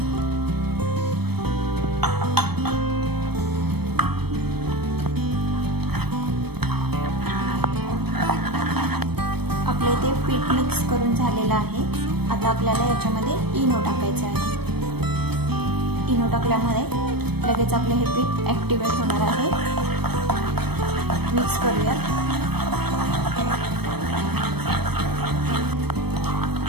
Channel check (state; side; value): late; left; 0.97 ms